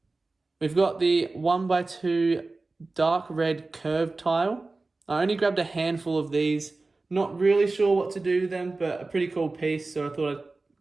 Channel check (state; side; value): quieter; left; 3.4 dB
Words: We've got the 1x2 dark red curved tile. I only grabbed a handful of these, not really sure what to do with them, but a pretty cool piece, so I thought I'd